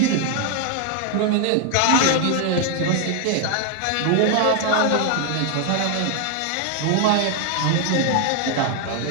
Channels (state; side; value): different; both; correlation 0.00